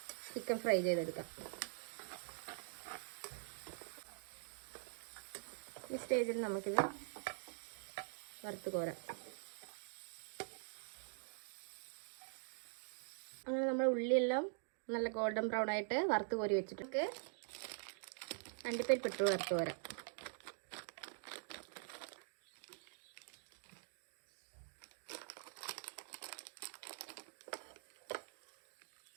ചിക്കൻ ഫ്രൈ ചെയ്തെടുക്കാം. ഈ സ്റ്റേജിൽ നമുക്കിത് വറുത്ത് കോരാം. അങ്ങനെ നമ്മൾ ഉള്ളിയെല്ലാം നല്ല ഗോൾഡൻ ബ്രൗൺ ആയിട്ട് വറുത്ത് കോരി വെച്ചിട്ട് അണ്ടിപ്പരിപ്പ് ഇട്ട് വറുത്ത് കോരാം.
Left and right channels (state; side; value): silent; left; digital silence